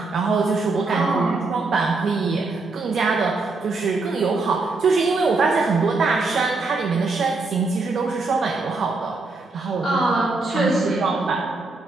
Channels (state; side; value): quieter; left; 3.6 dB